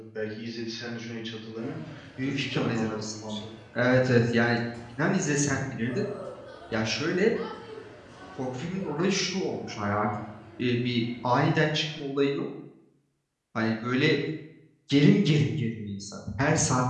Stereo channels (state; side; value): identical; both; correlation 1.00